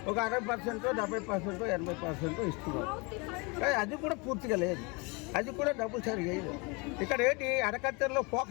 ఒక 60%, 70%, 80% ఇస్తున్నారు. కానీ అది కూడా పూర్తిగా లేదు, అది కూడా డబ్బులు సరిగా లేదు. ఇక్కడ ఏంటి అరకత్తెరలో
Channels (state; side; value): quieter; right; 29.2 dB